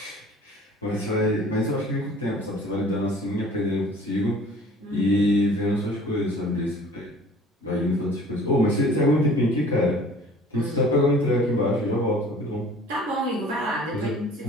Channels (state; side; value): normal; both; correlation 0.48